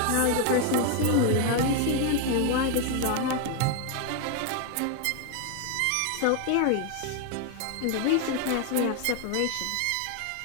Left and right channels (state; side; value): different; both; correlation 0.01